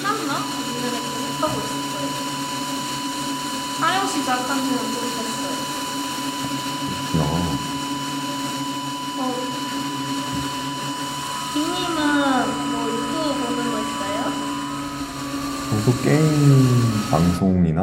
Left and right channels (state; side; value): identical; both; correlation 1.00